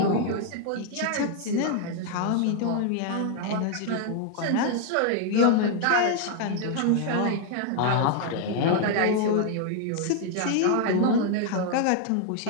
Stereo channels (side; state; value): both; different; correlation 0.00